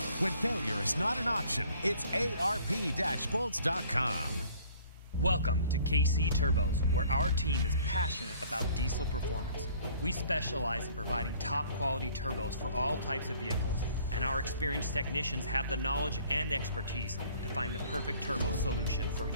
When failure is not an option, it's ARP-bolts.com. Welcome to KC Turbos, where our team is passionate about diesel performance. We specialize in providing top quality turbos for all types of vehicles, and our experienced technicians have the knowledge and expertise to find the perfect turbo solution for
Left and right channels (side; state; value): both; inverted; correlation -0.56